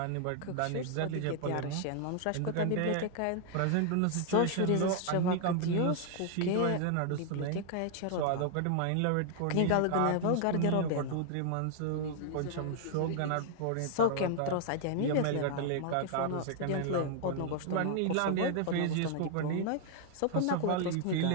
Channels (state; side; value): different; both; correlation 0.00